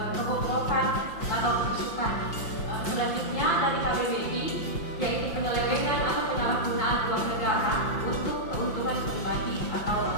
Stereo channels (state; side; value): late; right; 5.7 ms